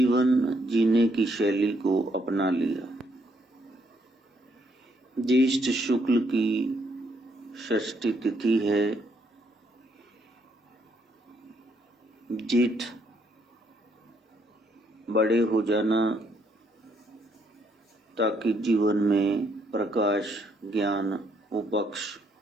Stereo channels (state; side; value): normal; both; correlation 0.72